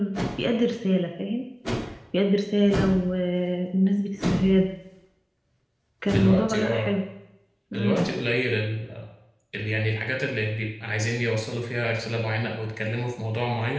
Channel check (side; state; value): both; identical; correlation 1.00